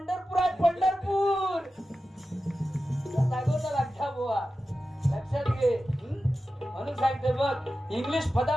पंढरपूर. लक्षात बुवा लक्षात घे. म्हणून सांगते बघ इंग्लिश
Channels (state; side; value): normal; both; correlation 0.93